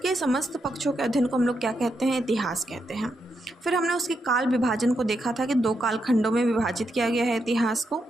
समस्त पक्षों के अध्ययन को हम लोग क्या कहते हैं? इतिहास कहते हैं। फिर हमने उसके काल विभाजन को देखा था कि 2 कालखंडों में विभाजित किया गया है इतिहास को।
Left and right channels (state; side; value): normal; both; correlation 0.82